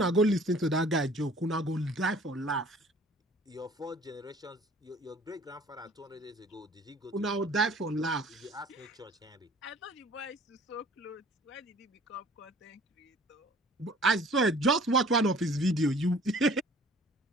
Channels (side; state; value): both; normal; correlation 0.51